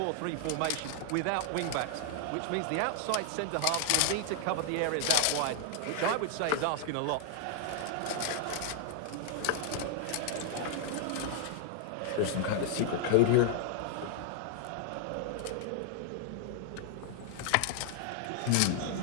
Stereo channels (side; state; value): both; different; correlation 0.00